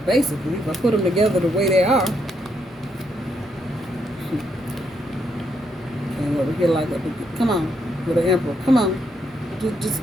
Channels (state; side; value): normal; both; correlation 0.76